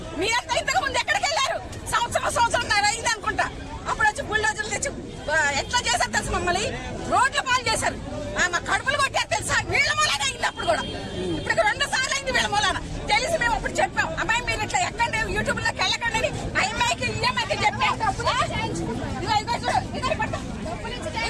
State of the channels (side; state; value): both; identical; correlation 1.00